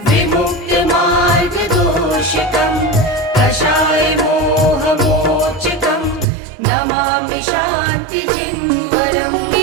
विमुक्तमार्गदोषकं कषायमोहमोचकं नमामि शान्तिजिन्वरम्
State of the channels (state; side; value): drops out; left; at 6.2 s